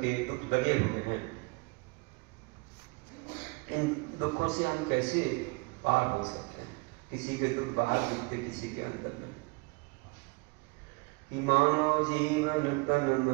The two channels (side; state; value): left; quieter; 28.2 dB